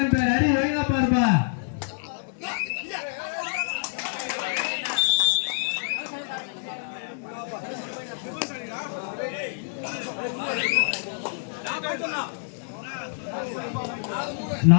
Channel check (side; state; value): right; silent; 60 dB below the other